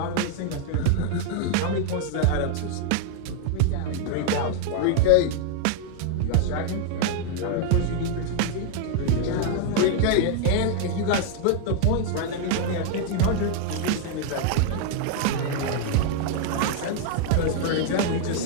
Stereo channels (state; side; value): different; both; correlation 0.00